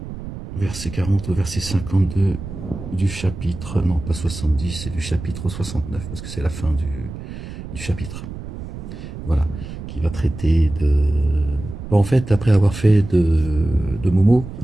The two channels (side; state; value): right; noise; rumble, 10 dB below the sound